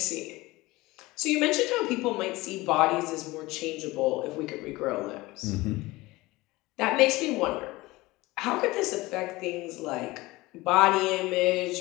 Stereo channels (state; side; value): quieter; right; 20.5 dB